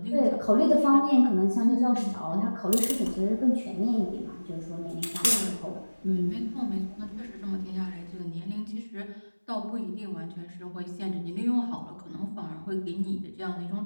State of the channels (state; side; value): inverted; both; correlation -1.00